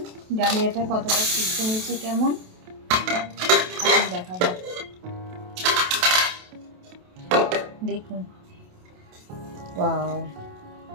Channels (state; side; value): late; left; 28 ms